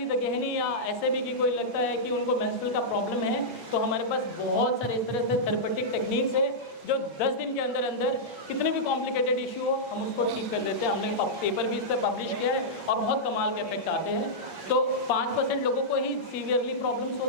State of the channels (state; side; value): late; right; 6.7 ms